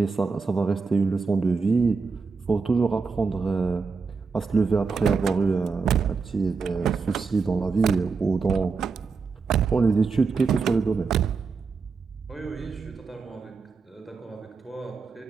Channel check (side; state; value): left; quieter; 4.8 dB